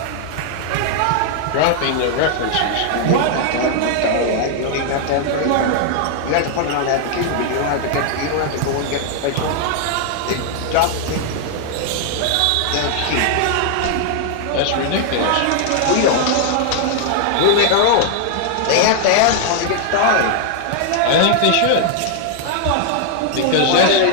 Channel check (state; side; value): different; both; correlation 0.00